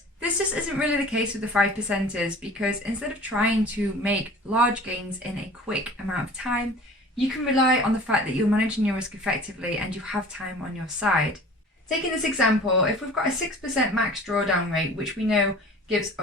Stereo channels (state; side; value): normal; both; correlation 0.44